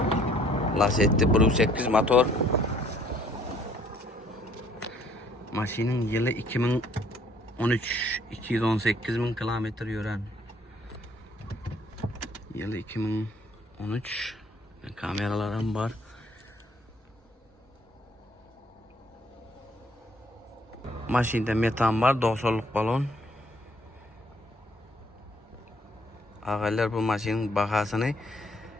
Lacetti 1.8 motor. Maşinin yılı 2013, 218 bin kilometre yürən. Yılı 2013. Kameralarım var. Maşinde metan var, 90'lık balon. Ağaylar bu maşinin bahasını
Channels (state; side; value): normal; both; correlation 0.62